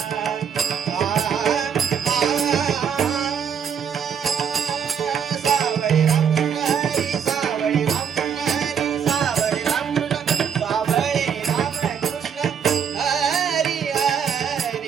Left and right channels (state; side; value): quieter; left; 7.5 dB